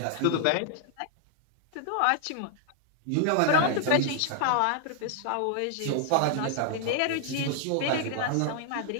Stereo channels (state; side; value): different; both; correlation 0.00